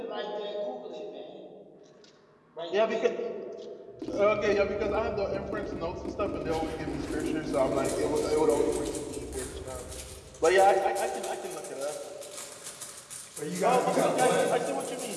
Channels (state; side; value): identical; both; correlation 1.00